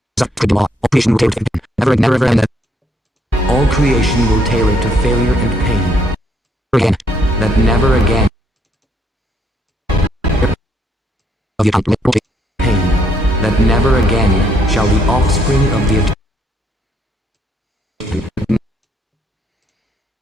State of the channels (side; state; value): both; normal; correlation 0.71